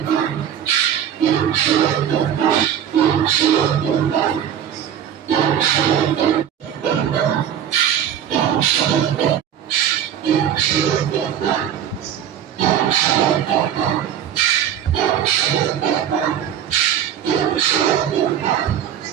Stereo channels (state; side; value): quieter; left; 9.7 dB